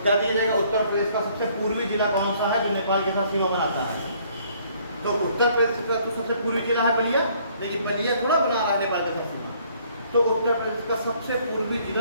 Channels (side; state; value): both; inverted; correlation -0.62